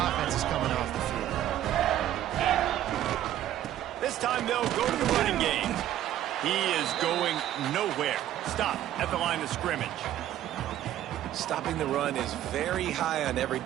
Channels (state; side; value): quieter; left; 12.3 dB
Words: is coming off the field. This time they'll go to the running game. He is going nowhere. Stop at the line of scrimmage. Stopping the run is very high on every